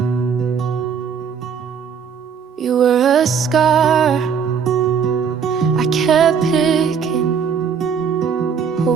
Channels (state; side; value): quieter; left; 6.8 dB